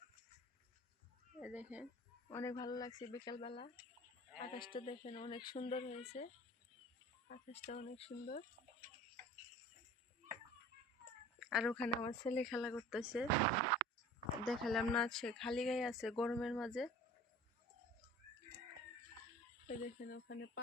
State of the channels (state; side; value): normal; both; correlation 0.44